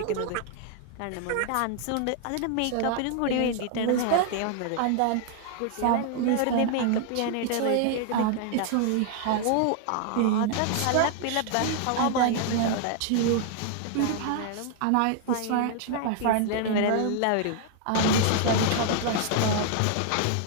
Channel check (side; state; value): both; different; correlation 0.00